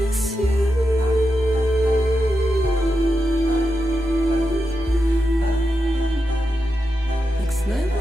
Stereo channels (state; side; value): normal; both; correlation 0.87